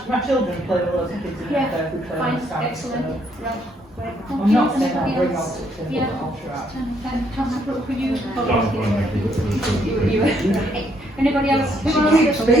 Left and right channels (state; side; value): normal; both; correlation 0.71